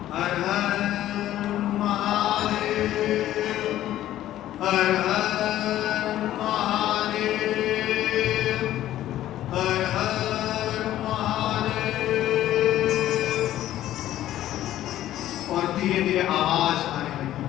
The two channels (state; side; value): quieter; right; 13.2 dB